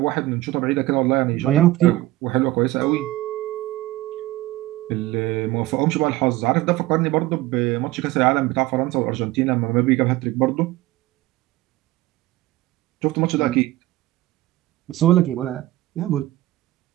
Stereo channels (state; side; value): quieter; left; 17.3 dB